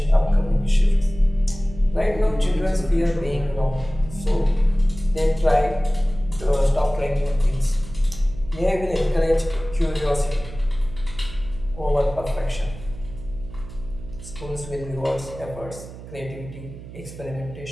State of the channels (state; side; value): noise; right; hum, 14 dB below the sound